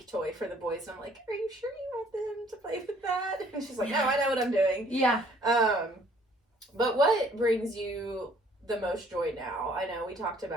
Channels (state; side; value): normal; both; correlation 0.60